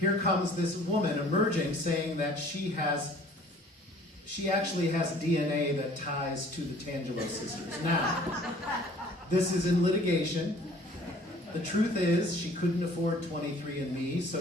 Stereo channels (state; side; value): normal; both; correlation 0.52